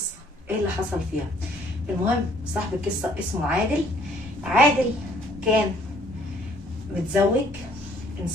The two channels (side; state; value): both; normal; correlation 0.62